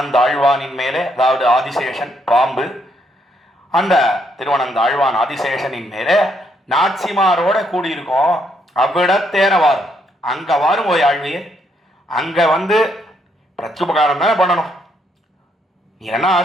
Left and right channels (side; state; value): both; normal; correlation 0.74